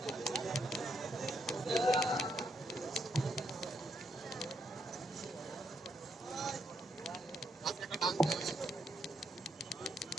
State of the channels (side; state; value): both; normal; correlation 0.77